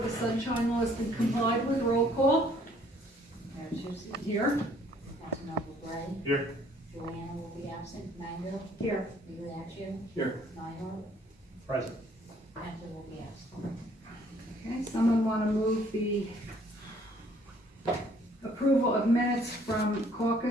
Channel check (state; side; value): normal; both; correlation 0.61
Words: the sunshine law has been complied with. Roll call. Mayor Tucci, Here. Councilmember Gray. Here. Joanna will be absent. Mango. Here. Migliaccio. Here. Nyhart. Present. Heffley will be absent. Okay, someone want to move the approval of minutes from